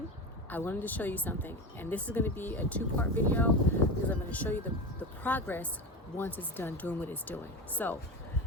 I wanted to show you something, and this is going to be a two-part video because I'm going to show you the progress once it's done doing what it's doing. So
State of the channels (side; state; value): both; normal; correlation 0.23